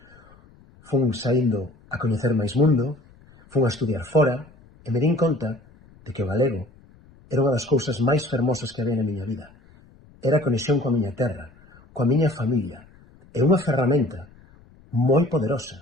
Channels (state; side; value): noise; left; rumble, 26 dB below the sound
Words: fun saindo a coñecer máis mundo, fun a estudiar fora e me din conta de que o galego era unha das cousas máis fermosas que había na miña vida. Era a conexión coa miña terra, coa miña familia, e unha ferramenta moi